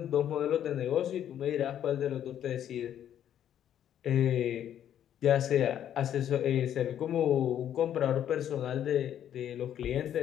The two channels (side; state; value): right; quieter; 10.3 dB